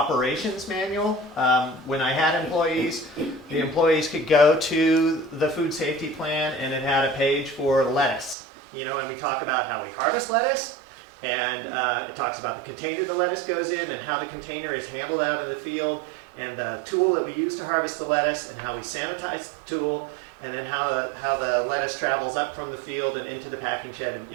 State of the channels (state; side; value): drops out; left; at 8.3 s